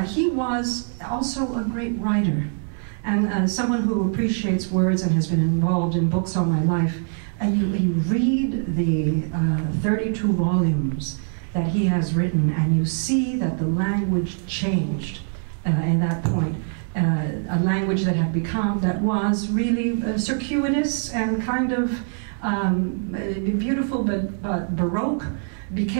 he was also a great writer, and someone who appreciates words and has been involved in books all my life. And you read the 32 volumes that he has written, and you see that the language changed at that point. A language that had become, that was really circuitous and kind of beautiful but baroque,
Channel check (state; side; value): silent; left; 63 dB below the other